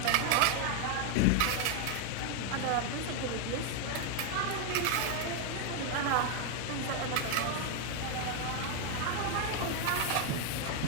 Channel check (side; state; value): both; different; correlation 0.00